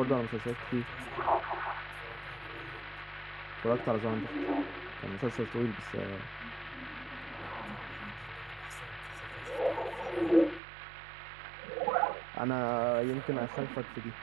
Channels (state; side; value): drops out; left; at 10.6 s